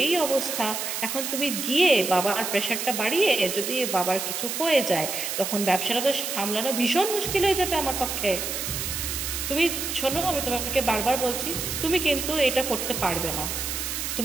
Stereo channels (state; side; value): noise; right; hiss, 3 dB below the sound